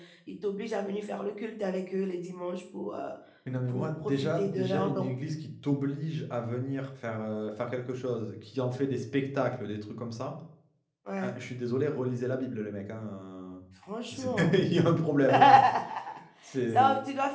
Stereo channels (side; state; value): both; identical; correlation 1.00